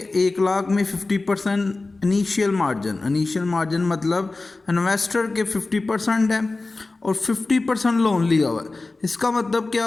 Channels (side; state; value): right; quieter; 3.4 dB